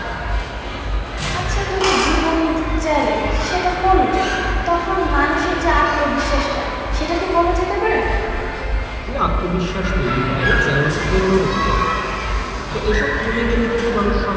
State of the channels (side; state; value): both; identical; correlation 1.00